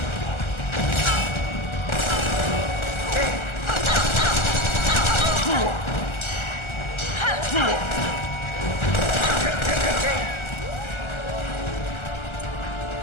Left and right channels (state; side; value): late; right; 1.3 ms